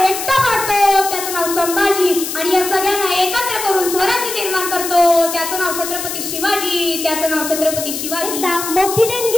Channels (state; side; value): noise; left; hiss, 5 dB below the sound